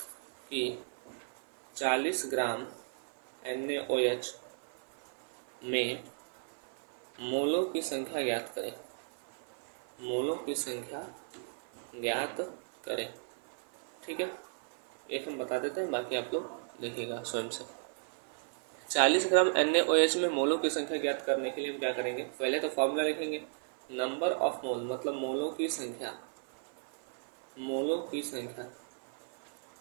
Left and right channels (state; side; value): silent; left; 54 dB below the other